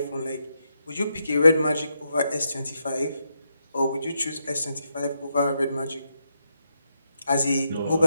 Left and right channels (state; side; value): inverted; both; correlation -0.83